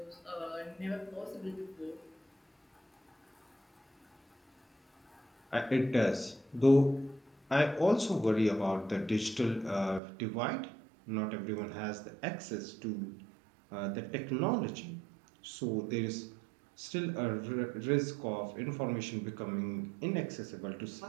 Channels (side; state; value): left; drops out; at 10.0 s